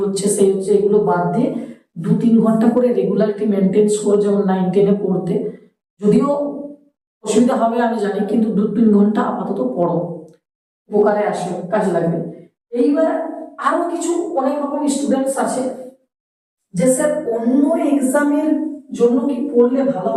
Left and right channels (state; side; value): identical; both; correlation 1.00